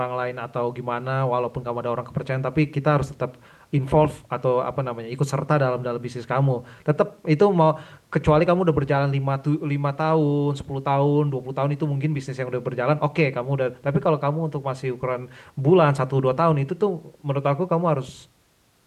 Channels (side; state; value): both; identical; correlation 1.00